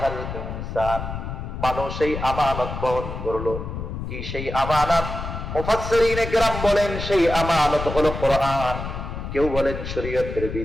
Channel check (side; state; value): left; noise; rumble, 7 dB below the sound